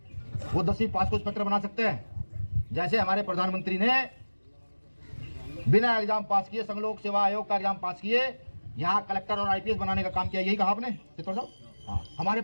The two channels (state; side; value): inverted; both; correlation -1.00